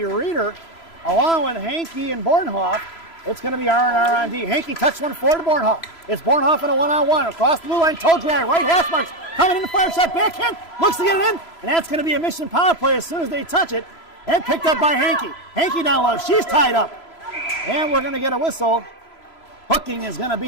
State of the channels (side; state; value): right; late; 3.0 ms